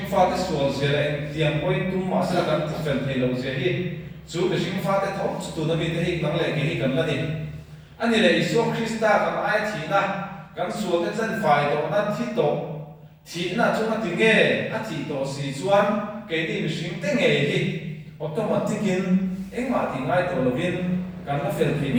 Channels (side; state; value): both; identical; correlation 1.00